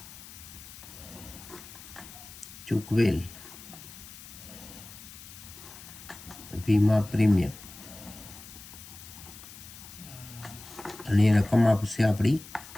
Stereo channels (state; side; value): noise; left; hiss, 16 dB below the sound